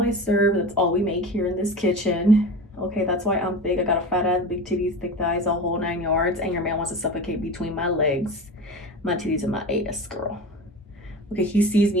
I serve. That's all we make here in this kitchen. Okay, that's why I'm big. I got a fat ass, big titties, thick thighs, a whole 9 yards, and your man wants to suffocate between my legs, my titties, and my ass, girl. Okay, he sees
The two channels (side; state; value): both; normal; correlation 0.31